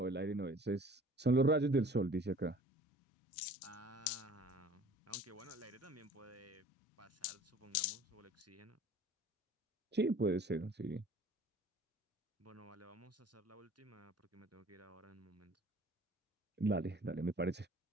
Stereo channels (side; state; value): both; normal; correlation 0.49